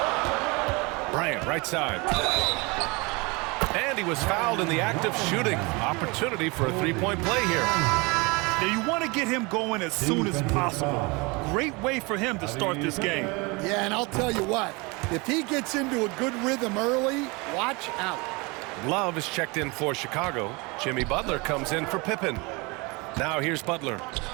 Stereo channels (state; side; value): quieter; left; 27.0 dB